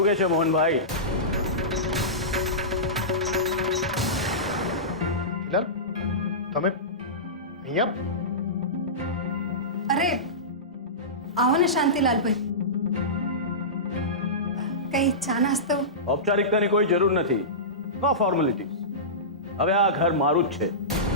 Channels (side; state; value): both; normal; correlation -0.19